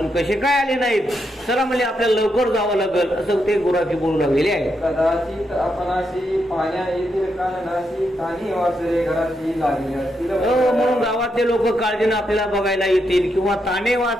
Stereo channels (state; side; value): normal; both; correlation 0.82